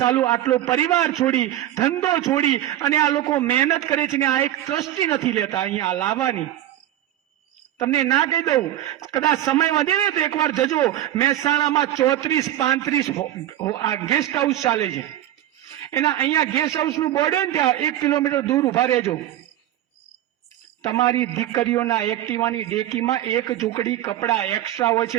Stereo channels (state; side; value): quieter; left; 13.0 dB